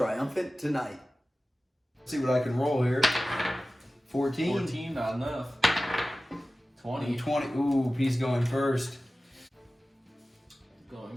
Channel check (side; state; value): both; normal; correlation 0.96